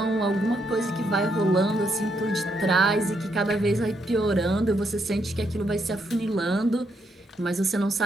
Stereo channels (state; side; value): normal; both; correlation 0.77